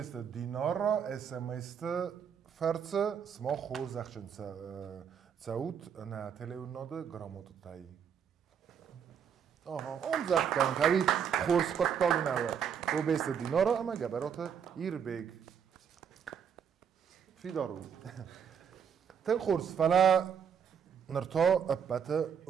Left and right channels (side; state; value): left; quieter; 7.7 dB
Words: دینار را SMS فرس سما خور زخشن سعود نه تلیوناده گراماتو تایی اون زخت کن که خورس قطال نوه کوبست دینار را اما گبرات ایربیگ فی دارو تن خورس فلا نرتا ابت